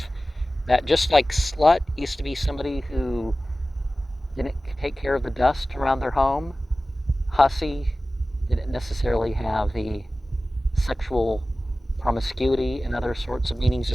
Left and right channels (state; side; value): normal; both; correlation 0.96